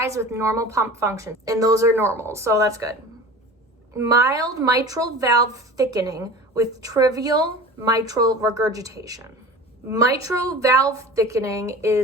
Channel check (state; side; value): normal; both; correlation 0.37